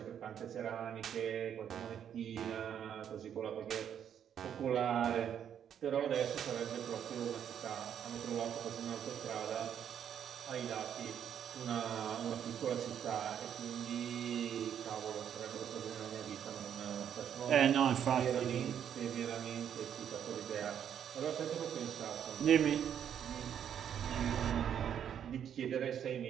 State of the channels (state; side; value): quieter; left; 9.0 dB